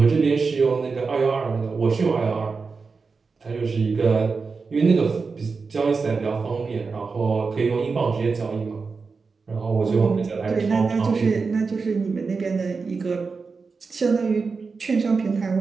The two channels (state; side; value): quieter; left; 4.7 dB